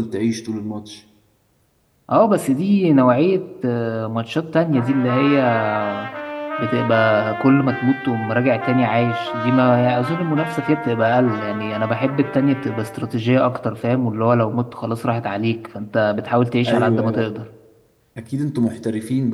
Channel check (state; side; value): identical; both; correlation 1.00